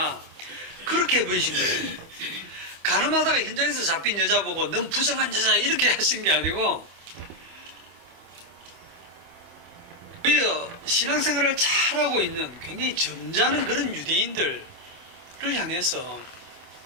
그렇게 해버리신 거예요. 가늠하다가 현장에서 잡힌 여자 보고 넌 부정한 여자 이렇게 하신 게 아니고 오히려 신앙생활을 잘하고 있는 굉장히 점잖은 그런 유대인들을 향해서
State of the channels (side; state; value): left; late; 26 ms